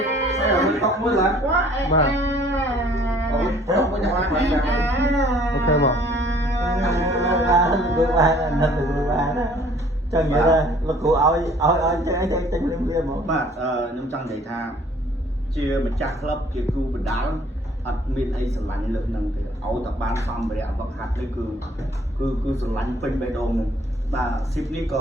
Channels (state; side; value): normal; both; correlation 0.57